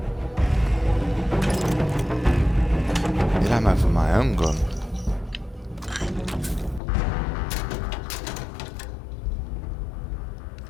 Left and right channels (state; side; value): drops out; right; at 6.8 s